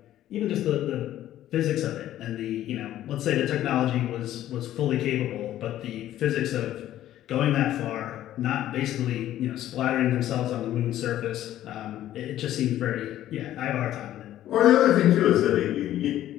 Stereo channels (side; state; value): right; quieter; 12.9 dB